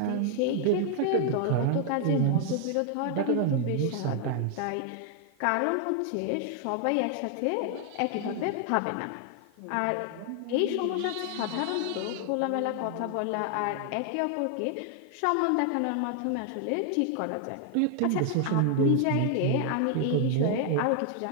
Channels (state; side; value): different; both; correlation 0.00